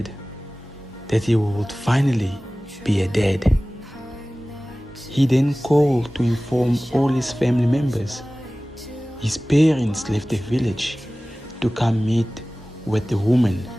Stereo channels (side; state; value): both; normal; correlation 0.98